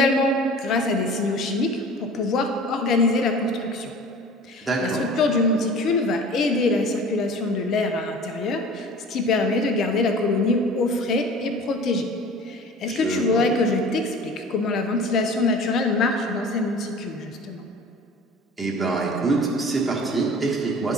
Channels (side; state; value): both; normal; correlation 0.42